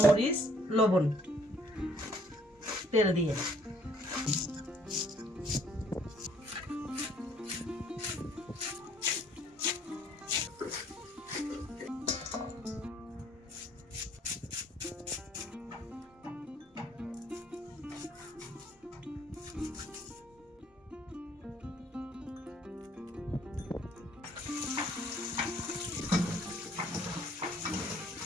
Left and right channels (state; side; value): normal; both; correlation 0.62